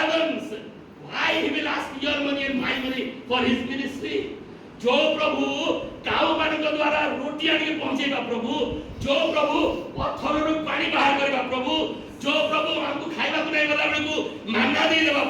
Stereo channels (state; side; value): identical; both; correlation 1.00